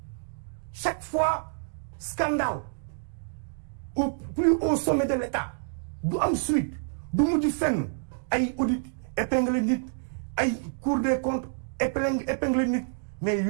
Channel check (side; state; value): left; silent; digital silence